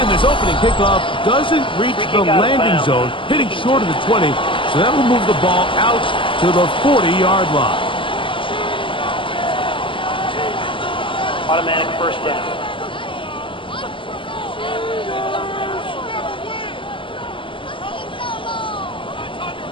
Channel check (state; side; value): late; right; 0.25 ms